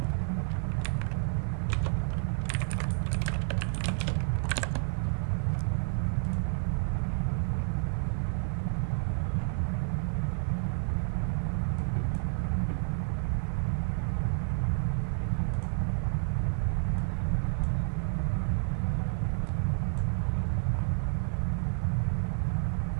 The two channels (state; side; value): silent; left; digital silence